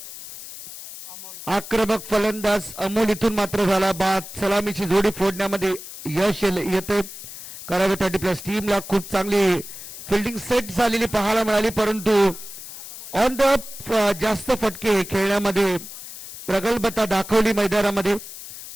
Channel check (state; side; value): noise; left; hiss, 13 dB below the sound